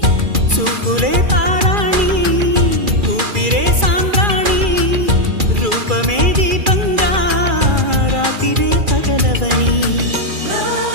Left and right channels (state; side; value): late; left; 2.4 ms